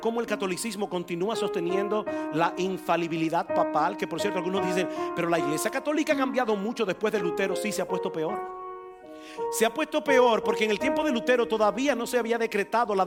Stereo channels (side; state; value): both; identical; correlation 1.00